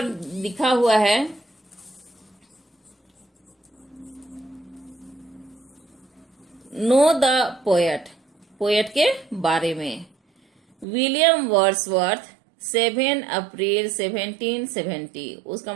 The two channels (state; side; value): drops out; left; at 10.9 s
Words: लिखा हुआ है, नो द पोएट, पोएट के बारे में। विलियम वर्ड्सवर्थ 7 अप्रैल 1770, उसका